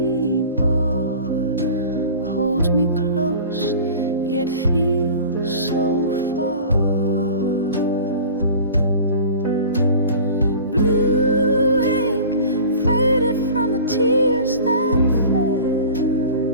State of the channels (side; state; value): both; inverted; correlation -0.40